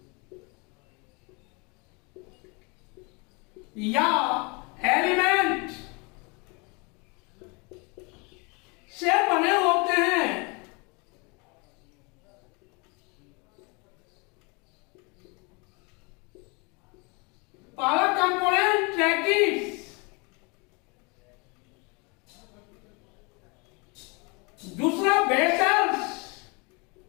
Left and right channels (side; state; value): right; quieter; 30.4 dB